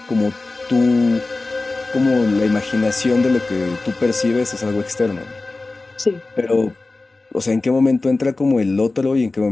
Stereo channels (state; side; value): quieter; right; 3.3 dB